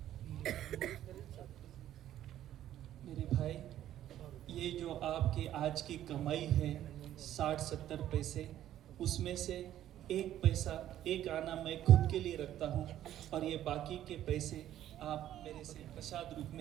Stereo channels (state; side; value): quieter; left; 12.1 dB